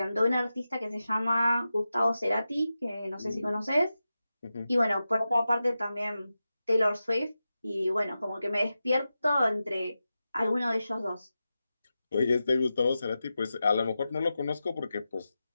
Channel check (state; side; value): inverted; both; correlation -0.92